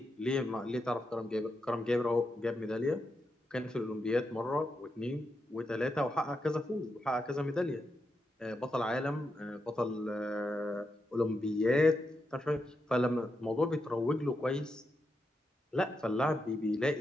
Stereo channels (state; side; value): normal; both; correlation 0.85